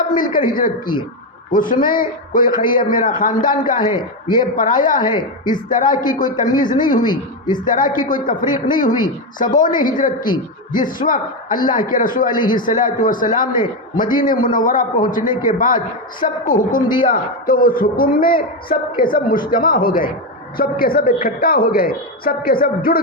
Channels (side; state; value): both; normal; correlation 0.09